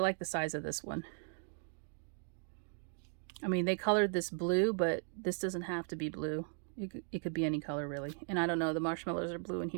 the size of this one. I mean, they colored this blue, but this doesn't have to be blue. It could be any color really. And I don't know, the marshmallows are blue in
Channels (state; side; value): silent; left; 53 dB below the other